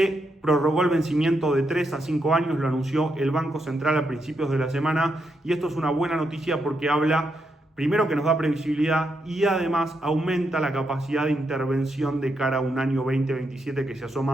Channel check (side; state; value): both; normal; correlation 0.81